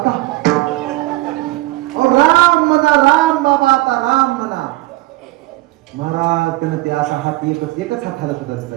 राम म्हणा, राम बाबा, आता राम म्हणा. महाराज त्यानं ते असा हात एकच हात हालत होता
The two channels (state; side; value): quieter; left; 19.5 dB